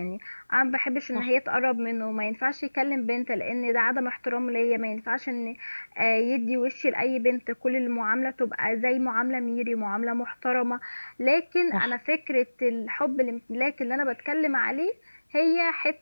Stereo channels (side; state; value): both; inverted; correlation -1.00